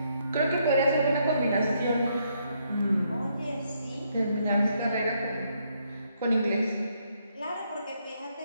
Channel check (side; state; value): both; inverted; correlation -0.74